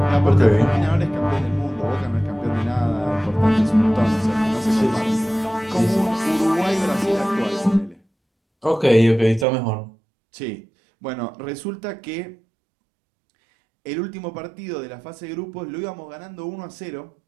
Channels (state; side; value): drops out; left; at 9.5 s